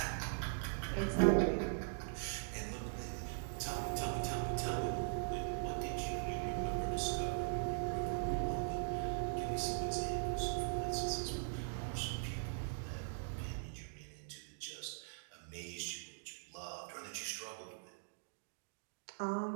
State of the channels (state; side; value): silent; left; digital silence